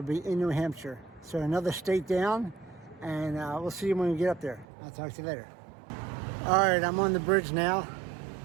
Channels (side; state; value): left; drops out; at 4.7 s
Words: be in New Hampshire. So another state down, and we'll see you when we get up there. I'll talk to you later. All right, I'm on the bridge now,